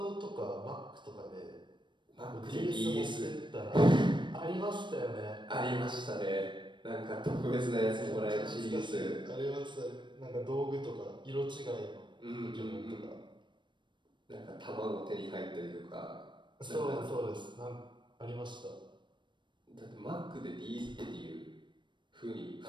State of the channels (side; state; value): left; late; 0.23 ms